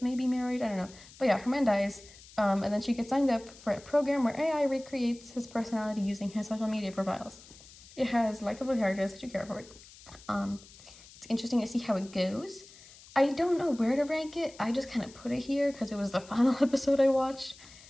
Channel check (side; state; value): left; noise; hiss, 21 dB below the sound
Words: maybe married, I don't know. But yeah, her man dies, and then she gets signed up for a program where AI recreates his personality using his social media profiles. It has likable characters that you care for. It's interesting to see how it goes. I don't know where to rank it. I just kind of put it here because it was the final episode I watched.